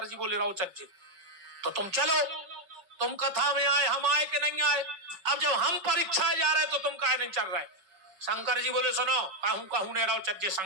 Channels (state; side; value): late; left; 5.3 ms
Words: जी बोले रहो चज्जे तो तुम चलो। तुम कथा में आए, हम आए कि नहीं आए? अब जब हम परीक्षा जा रहे तो तुम काहे नहीं चल रहे? शंकर जी बोले सुनो, कहूं कहूं ने रहो चज्जे